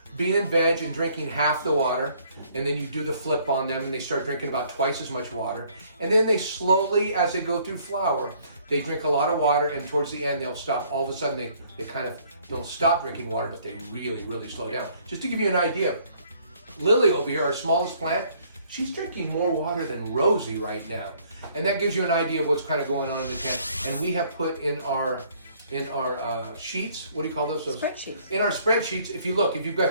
being in veg and drinking half the water, and then you do the flip on them and they start drinking about twice as much water. And then they slowly, as they go through flower, they drink a lot of water, and towards the end they'll stop. All of a sudden they kind of don't stop drinking water, but they really, really slow down. Just to give you an idea, Lily over here, our smallest plant, she's drinking more water than Rosy right now. And that gives you an idea of what's kind of going on in the tent. And we have put in our sheets, what do you call those? Spreadsheets. In our spreadsheets, if you've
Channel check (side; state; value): both; inverted; correlation -0.62